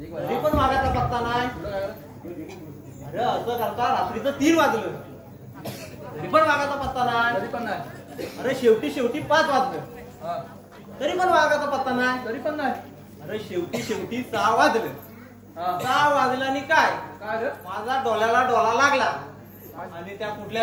तरी वेळा. पण वागायचा पत्ता नाही. तुला काय झालं? अरे असं करता रात्रीचं 3 वाजलं, तरी पण वागायचा पत्ता नाही. तरी पण नाही. अरे शेवटी 5 वाजलं, हा. तरी पण वागायचा पत्ता नाही. तरी पण नाही. अरे शेवटी 6 वाजलं. हा. 6 वाजलं आणि काय, काय रे? माझा डोळ्याला डोळा लागला आणि त्या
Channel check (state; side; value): identical; both; correlation 1.00